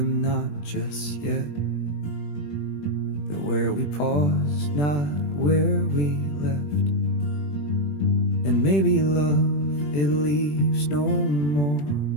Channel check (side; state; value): right; late; 20 ms